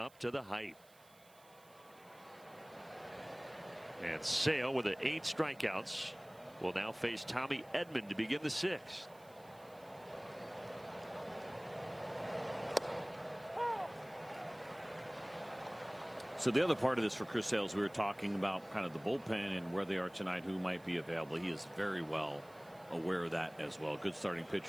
to the hype. And Sale with 8 strikeouts will now face Tommy Edman to begin the 6th. So the other part of this for Chris Sale, we were talking about kind of the bullpen and where they are tonight, who might be available. He is very well aware of that as well. Good starting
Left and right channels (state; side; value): noise; right; hiss, 26 dB below the sound